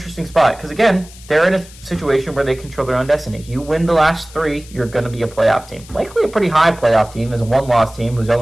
spot because, again, they're in a situation where they control their own destiny. You win the last 3, you're going to be a playoff team. Likely a pretty high playoff team as a one-loss team whose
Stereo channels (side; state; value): left; noise; hiss, 21 dB below the sound